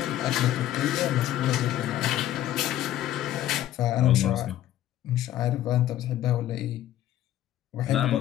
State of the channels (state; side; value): quieter; right; 12.9 dB